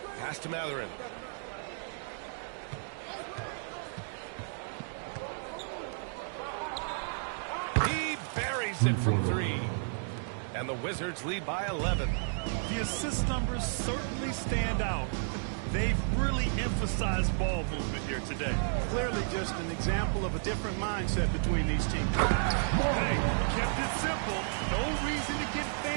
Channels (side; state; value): left; silent; digital silence